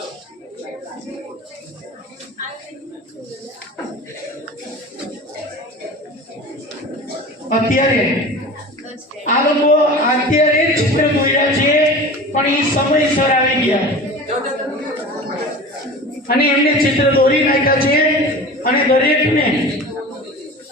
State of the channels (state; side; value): normal; both; correlation 0.35